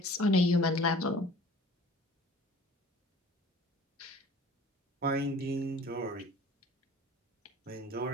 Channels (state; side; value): normal; both; correlation 0.47